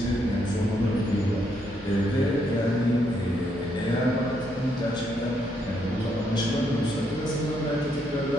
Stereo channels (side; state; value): both; normal; correlation 0.75